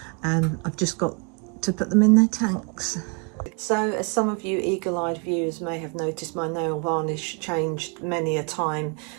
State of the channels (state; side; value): quieter; left; 33.5 dB